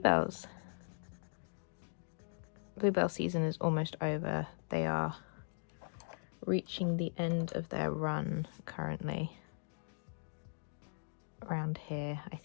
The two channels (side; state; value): right; silent; digital silence